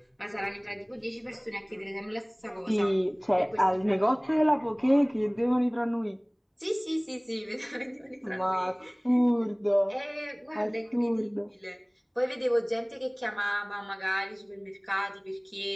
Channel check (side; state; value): both; identical; correlation 1.00